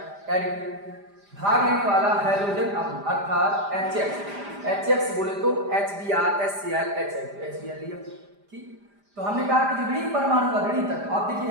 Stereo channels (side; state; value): left; late; 5.0 ms